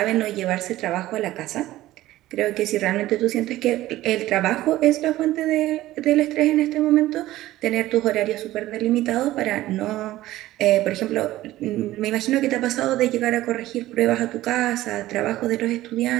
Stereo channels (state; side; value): quieter; left; 15.8 dB